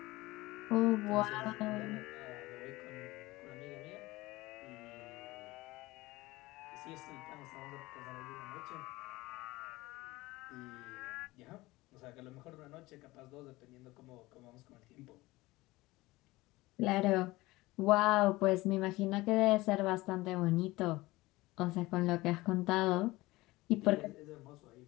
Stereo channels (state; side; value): quieter; right; 20.0 dB